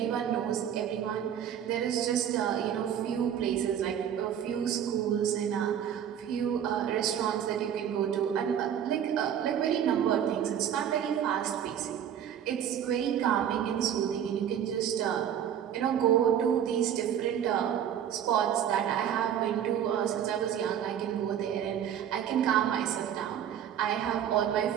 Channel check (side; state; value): left; quieter; 9.4 dB